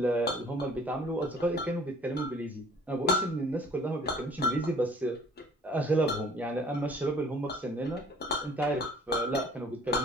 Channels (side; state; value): both; normal; correlation 0.53